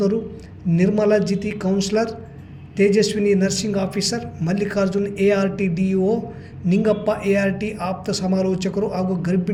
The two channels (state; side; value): identical; both; correlation 1.00